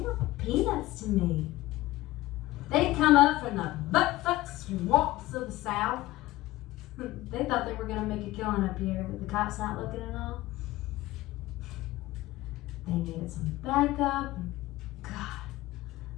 peanuts to me. They'd come up from the butt-fuck swamps of the South. They thought they were gonna make a killing up here with the cops not looking and all. They needed some backup. And God,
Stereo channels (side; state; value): right; quieter; 17.6 dB